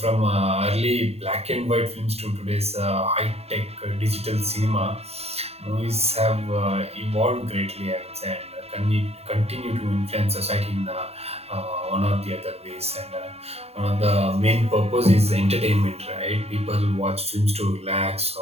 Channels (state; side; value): late; left; 0.30 ms